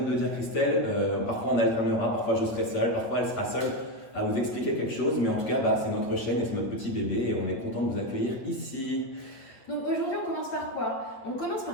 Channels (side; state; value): right; late; 8.5 ms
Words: de le dire Christelle, parfois on alternera, parfois je serai seule, parfois elle sera seule à vous expliquer quelque chose. Mais en tout cas, c'est notre chaîne et c'est notre petit bébé et on est content de vous accueillir ici. Donc aujourd'hui on commence par quoi? On commence